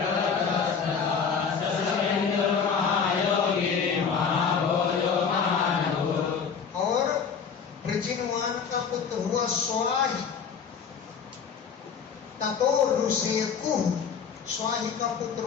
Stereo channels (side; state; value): right; quieter; 6.4 dB